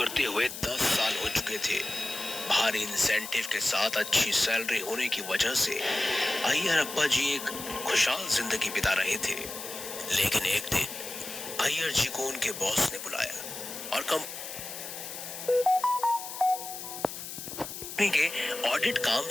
हुए 10 साल हो चुके थे। भारी इंसेंटिव के साथ अच्छी सैलरी होने की वजह से अय्यर अप्पा जी एक खुशहाल जिंदगी बिता रहे थे। लेकिन एक दिन अय्यर जी को उनके बॉस ने बुलाया और कंपनी के ऑडिट काम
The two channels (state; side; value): noise; left; hiss, 9 dB below the sound